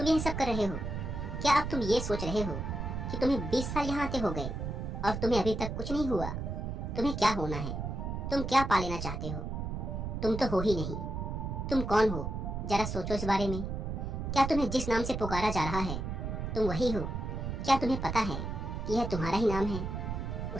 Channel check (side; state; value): right; noise; rumble, 4 dB below the sound